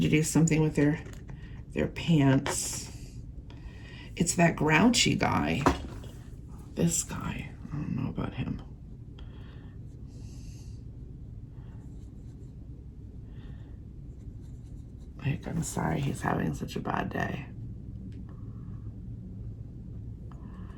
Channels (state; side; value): identical; both; correlation 1.00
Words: to do something with their pants. It's that grouchy guy. This guy. I don't know about him. Like, I'm sorry he's having such a bad day.